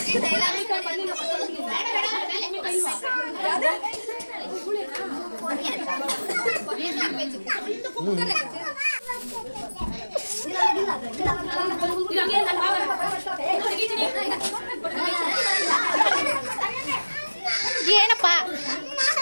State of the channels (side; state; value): both; inverted; correlation -1.00